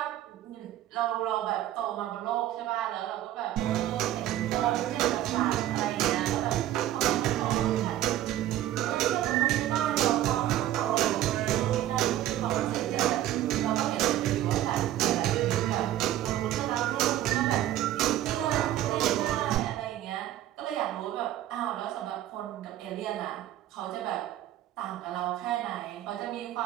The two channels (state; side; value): quieter; left; 13.1 dB